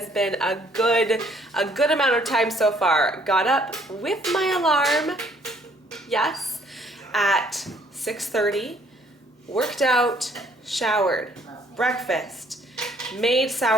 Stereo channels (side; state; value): both; normal; correlation 0.63